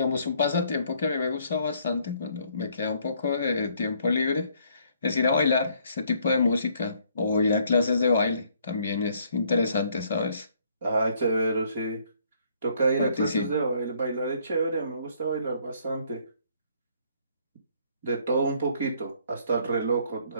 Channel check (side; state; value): both; inverted; correlation -0.66